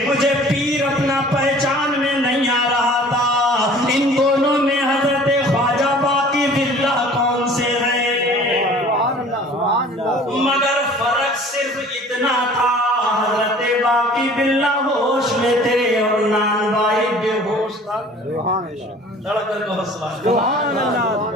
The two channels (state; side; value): normal; both; correlation 0.48